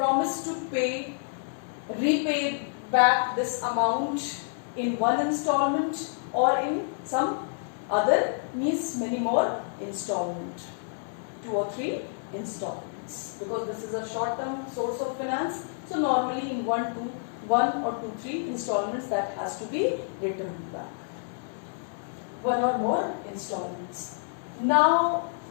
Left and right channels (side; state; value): right; silent; digital silence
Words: to repay back this amount in one installment or in some other, means many more installment, 2 or 3 installments, because this is a short-term source of finance. So normally in 1 or 2, 3 installments that has to be returned back. 1 or more installments. Now